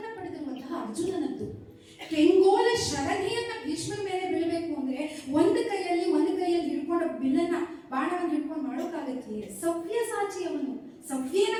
ಪಡೆದಿರುವಂತಹ ಅರ್ಜುನನದ್ದು. ಕೆಂಗೋಲ ಶರಣಿಯನ್ನ ಭೀಷ್ಮರ ಮೇಲೆ ಬೀಳಬೇಕು ಅಂದ್ರೆ ಒಂದು ಕೈಯಲ್ಲಿ ಹಿಡ್ಕೊಂಡು ಬಿಲ್ಲನ್ನ ಬಾಣವನ್ನು ಹಿಡ್ಕೊಂಡು ಮಾಡೋಕ್ಕಾಗತ್ತೆ? ಸವ್ಯಸಾಚಿ ಅವನು.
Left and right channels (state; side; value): identical; both; correlation 1.00